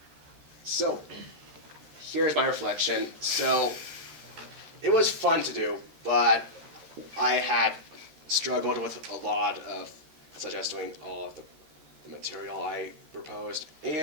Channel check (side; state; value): left; late; 13 ms